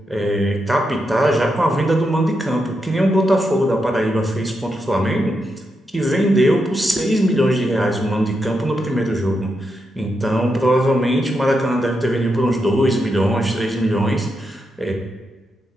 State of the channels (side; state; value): both; normal; correlation 0.84